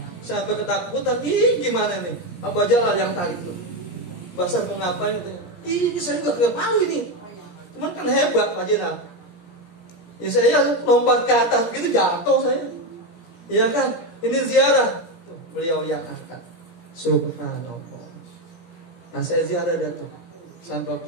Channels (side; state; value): right; late; 17 ms